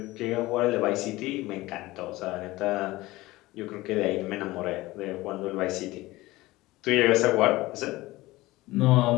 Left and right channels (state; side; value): quieter; right; 19.1 dB